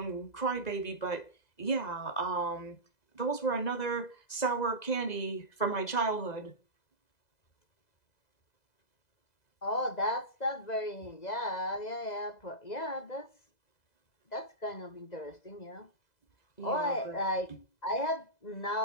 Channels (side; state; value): right; late; 2.0 ms